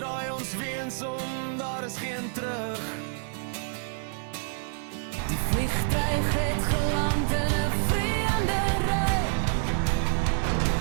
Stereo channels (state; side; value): silent; left; digital silence